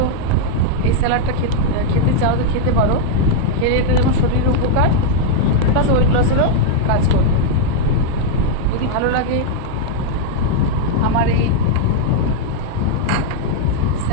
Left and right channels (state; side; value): different; both; correlation -0.01